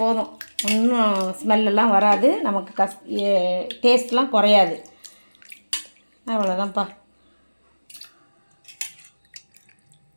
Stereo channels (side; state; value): both; inverted; correlation -1.00